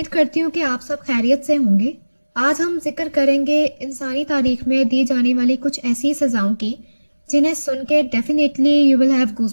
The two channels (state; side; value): inverted; both; correlation -1.00